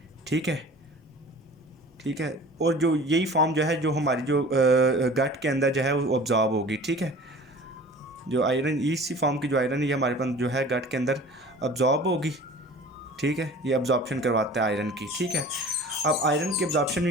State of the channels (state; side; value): normal; both; correlation 0.43